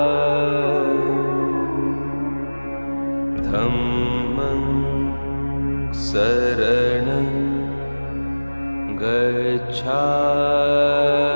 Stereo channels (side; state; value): both; inverted; correlation -1.00